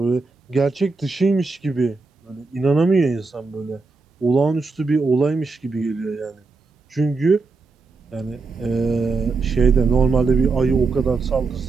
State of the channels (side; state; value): left; quieter; 3.9 dB